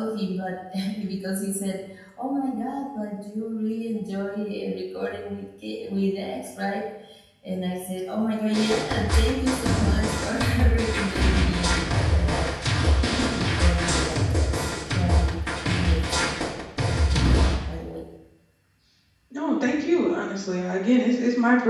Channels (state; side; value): identical; both; correlation 1.00